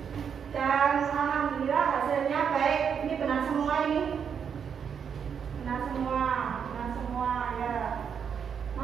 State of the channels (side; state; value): left; quieter; 7.3 dB